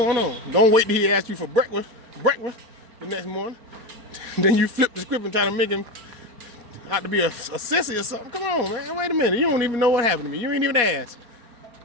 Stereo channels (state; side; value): late; left; 4.2 ms